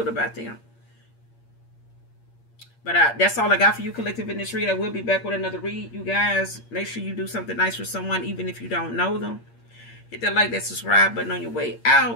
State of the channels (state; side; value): late; right; 8.6 ms